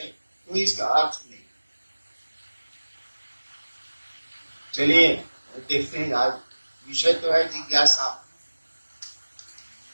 कोई इसका अर्थ नहीं। चलिए देखते हैं, आज विषय तो है जिज्ञासा।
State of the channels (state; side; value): inverted; both; correlation -1.00